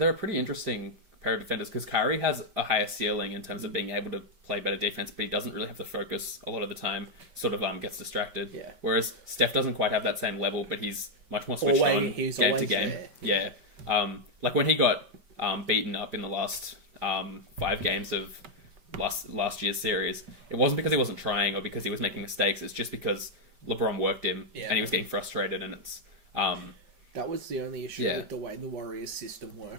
a pretty interesting pair of defenders because Kyrie has a higher ceiling in terms of being able to play better defense, but he doesn't really have the focus a lot of the time, sort of gets distracted. Yeah. Whereas Steph doesn't quite have that same level, but he's much more switched on game to game. There. Yeah. Like when he got beaten up in the last 5 games of last year's series, it wasn't because he wasn't trying or because he was making mistakes. It's just because LeBron worked him and he was getting frustrated, and it's that was the only issue with the way the Warriors system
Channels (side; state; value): left; late; 5.0 ms